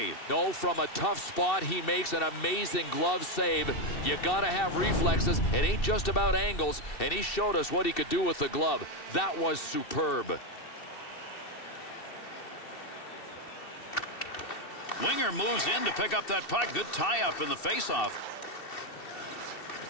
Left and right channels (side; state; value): right; late; 2.7 ms